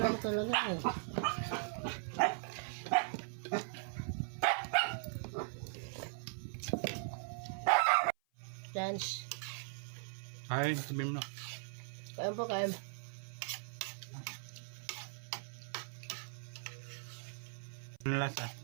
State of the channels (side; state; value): left; silent; 52 dB below the other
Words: ko talaga eh. Chance. Kain, sabihin mo na. Kain po, kain. Ano lasa?